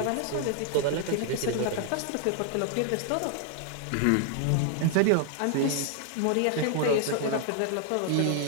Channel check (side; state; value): both; different; correlation 0.00